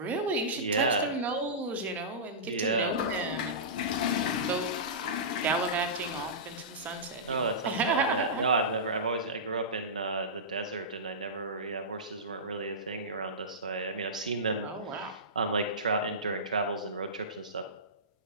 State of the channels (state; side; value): normal; both; correlation -0.19